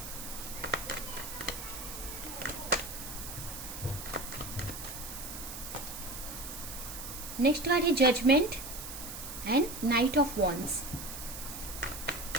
Next card है judgement and knight of wands,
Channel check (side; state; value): right; noise; hiss, 9 dB below the sound